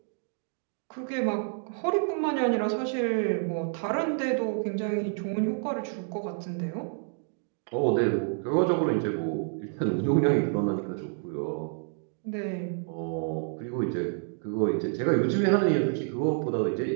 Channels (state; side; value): silent; left; 55 dB below the other